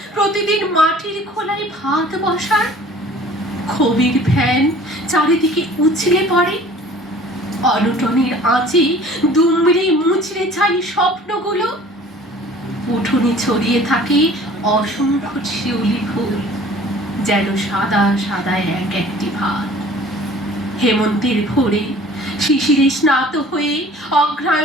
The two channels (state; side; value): normal; both; correlation 0.49